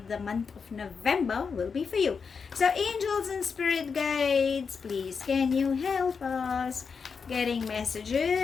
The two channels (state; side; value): quieter; right; 5.6 dB